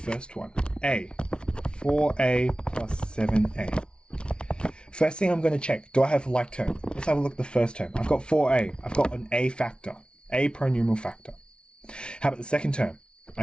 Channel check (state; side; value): late; right; 0.057 ms